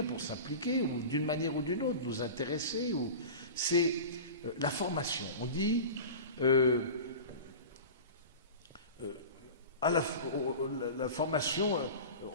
pour s'impliquer ou d'une manière ou d'une autre nous intéresser, c'est la formation. On dit la formation,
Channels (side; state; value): both; inverted; correlation -0.33